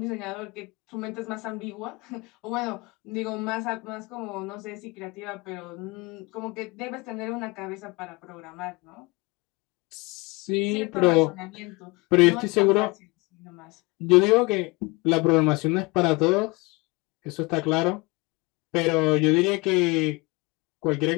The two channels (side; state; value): right; quieter; 25.5 dB